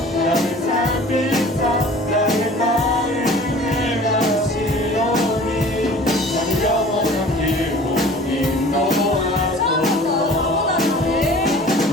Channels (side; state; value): both; normal; correlation 0.45